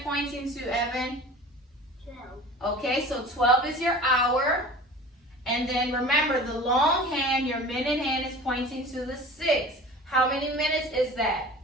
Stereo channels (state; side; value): normal; both; correlation 0.40